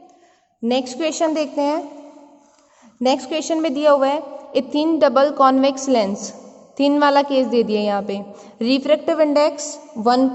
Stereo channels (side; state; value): both; identical; correlation 1.00